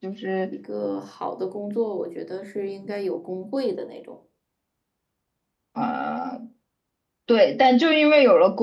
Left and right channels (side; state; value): both; identical; correlation 1.00